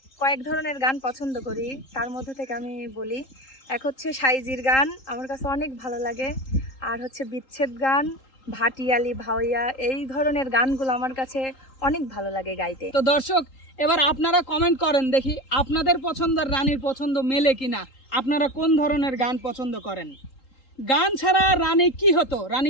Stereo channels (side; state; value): right; late; 3.8 ms